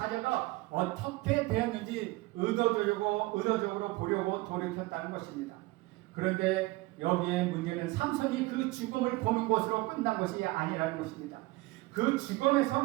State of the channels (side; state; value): left; quieter; 21.1 dB